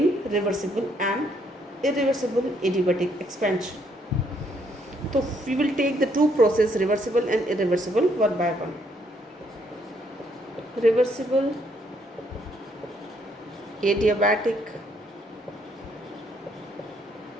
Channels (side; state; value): both; normal; correlation 0.70